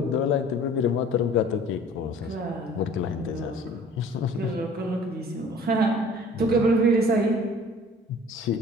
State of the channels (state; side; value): normal; both; correlation 0.49